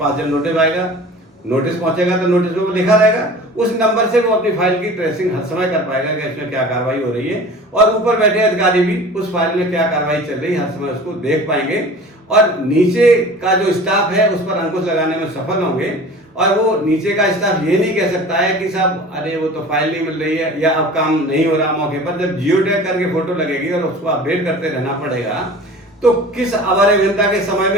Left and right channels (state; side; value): normal; both; correlation 0.41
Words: जन नोटिस आएगा, नोटिस पहुंचेगा तो नोटिस में लिखा रहेगा, उस नंबर से वो अपनी फाइल की ट्रेसिंग हर समय कर पाएगा कि इसमें क्या कार्रवाई हो रही है, और ऊपर बैठे अधिकारी भी उस फाइल में क्या कार्रवाई चल रही है हर समय उसको देख पाएंगे, और नीचे का जो स्टाफ है उस पर अंकुश लगाने में सफल होंगे। और वो नीचे का स्टाफ ये नहीं कह सकता है कि साहब अरे वो तो फाइल नहीं मिल रही है या अब काम नहीं हो रहा मौके पर। जब जियो टैग करके फोटो लगेगी और उसको अपडेट करते रहना पड़ेगा, तो किस अवर अभियंता के समय